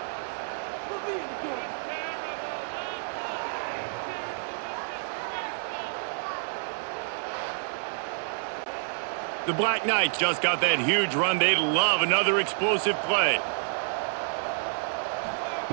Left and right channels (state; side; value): silent; left; 57 dB below the other